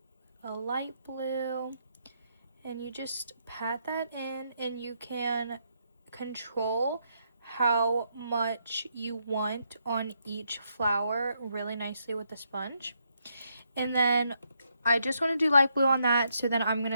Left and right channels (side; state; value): both; inverted; correlation -0.77